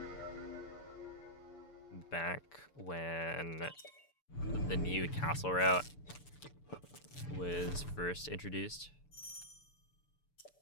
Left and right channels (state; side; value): late; right; 6.9 ms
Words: Back when the new castle route was first introduced.